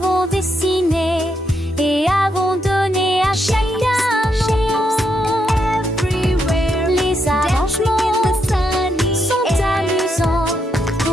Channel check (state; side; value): normal; both; correlation 0.79